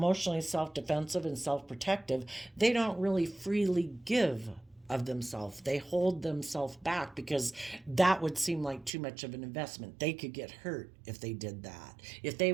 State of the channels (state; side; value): drops out; left; at 8.9 s